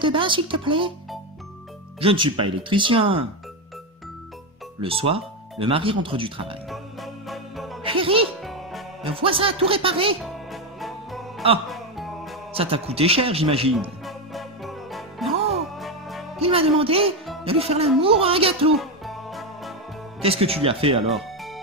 bain, s'il te plaît? Je ne suis pas électricien. Le soir, le mari rentre du travail. Chérie, le voisin a tout réparé. Ah, ça t'a coûté cher, j'imagine. Non, il m'a demandé de lui faire l'amour à un gâteau. Qu'est-ce que tu lui as fait alors?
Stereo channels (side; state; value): both; normal; correlation 0.10